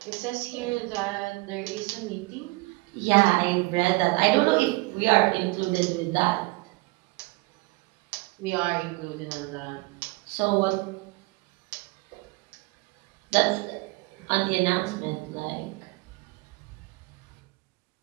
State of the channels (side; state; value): left; quieter; 24.1 dB